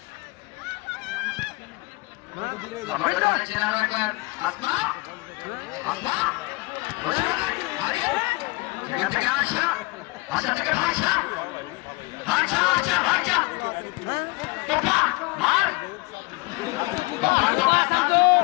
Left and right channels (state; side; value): quieter; right; 24.8 dB